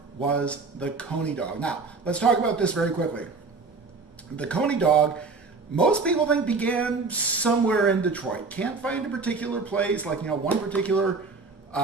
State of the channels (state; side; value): quieter; left; 4.2 dB